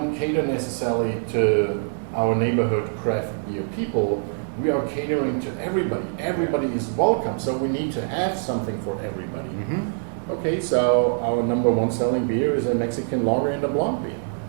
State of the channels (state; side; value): silent; left; 57 dB below the other